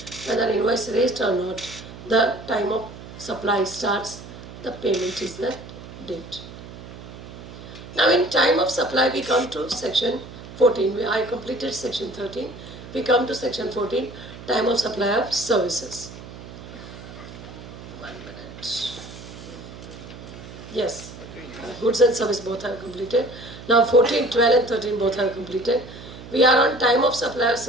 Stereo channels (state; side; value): noise; right; hum, 14 dB below the sound